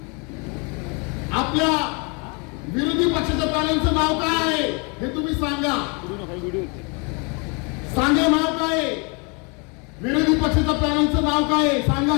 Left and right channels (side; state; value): right; quieter; 32.6 dB